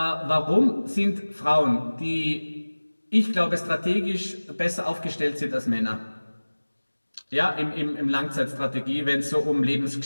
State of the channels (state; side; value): inverted; both; correlation -1.00